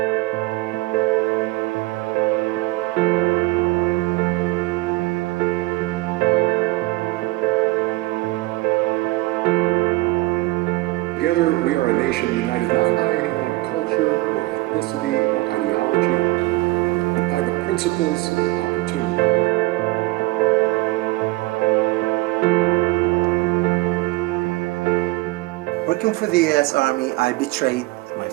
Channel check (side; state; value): left; quieter; 20.9 dB